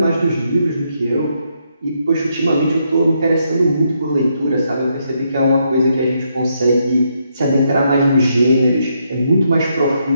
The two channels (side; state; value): both; inverted; correlation -0.77